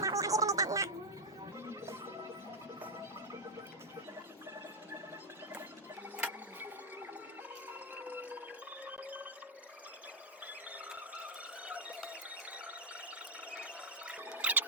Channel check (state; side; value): normal; both; correlation -0.01